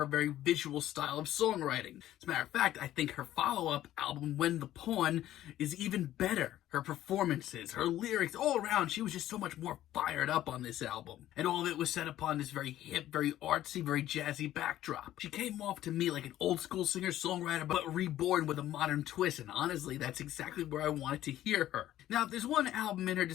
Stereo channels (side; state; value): right; quieter; 13.3 dB